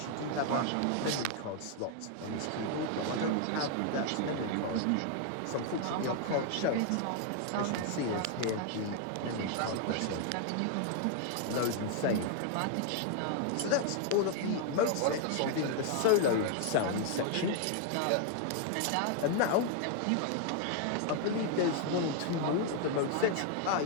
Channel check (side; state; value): both; different; correlation 0.00